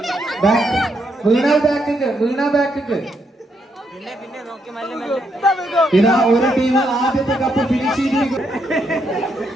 വീണ ബാക്കിക്ക്, വീണ ബാക്കിക്ക്. ഇതാ ഒരു ടീം ആദ്യത്തെ കപ്പ് ഫിനിഷ് ചെയ്തിരിക്കും.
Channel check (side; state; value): both; normal; correlation 0.78